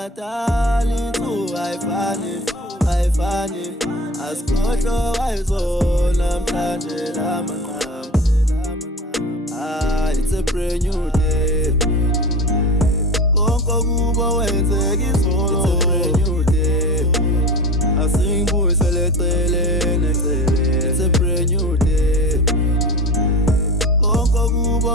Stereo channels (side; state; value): both; normal; correlation 0.32